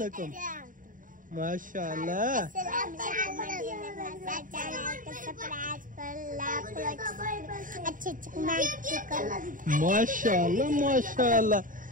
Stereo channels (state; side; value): late; left; 0.39 ms